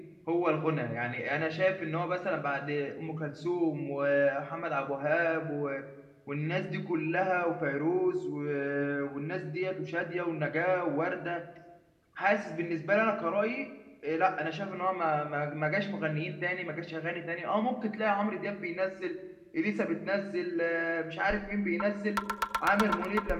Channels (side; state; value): both; identical; correlation 1.00